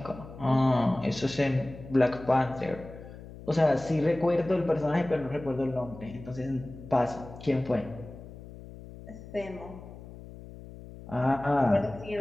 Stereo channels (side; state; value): left; noise; hum, 15 dB below the sound